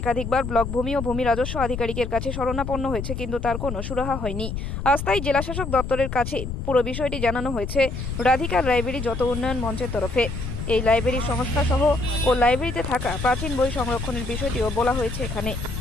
একাধিকবার ব্লক ভূমি ও ভূমি রাজস্ব আধিকারিকের কাছে শরণাপন্ন হয়েছে, কিন্তু তার কোনো সুরাহা হয়নি। আজ তাই জেলাশাসক দপ্তরের কাছে পুরো বিষয়টি জানানো হয়েছে রাধিকা লাইব্রেরি যত উন্নয়ন মঞ্চের তরফে। এই লাইব্রেরির সংস্থা সহ ও লাইব্রেরিতে থাকা প্রাচীন বই সংরক্ষণের বিষয়টিও বলা হয়েছে এখানে।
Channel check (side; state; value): left; noise; rumble, 5 dB below the sound